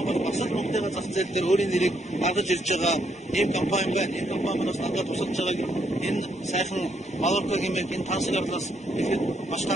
бол бас л Монголын зах зээл дээр өөрийн нэрийг гаргаж ирж байгаа ийм компани байна. Энэ компаниудаас надад тусалж байгааг энэ сайхан Малорка гэмээр энэ тансаглаас ихэд маш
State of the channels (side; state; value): both; normal; correlation 0.74